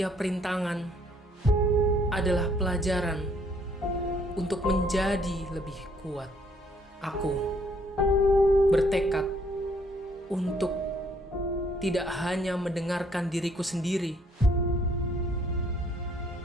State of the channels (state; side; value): normal; both; correlation 0.65